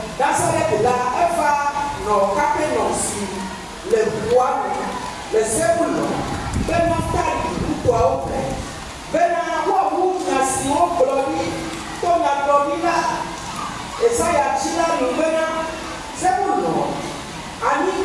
Nazareth la eva no Capernaum le bois le Zebulon ben Naphtali kwa ope bena wa munyasi oblodi to na globila Esaya chila lubena Zebulon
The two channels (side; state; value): both; identical; correlation 1.00